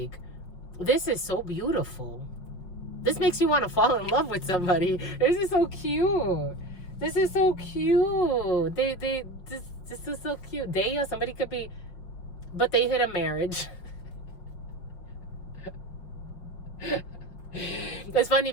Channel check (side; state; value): right; late; 5.5 ms